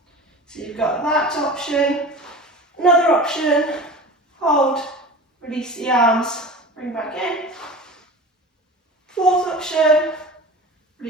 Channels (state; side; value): normal; both; correlation 0.35